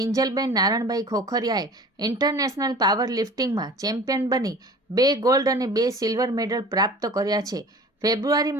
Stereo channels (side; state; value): both; normal; correlation 0.42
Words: નારણભાઈ ખોખરિયાએ ઇન્ટરનેશનલ પાવર લિફ્ટિંગમાં ચેમ્પિયન બની 2 ગોલ્ડ અને 2 સિલ્વર મેડલ પ્રાપ્ત કર્યા છે. ફેબ્રુઆરી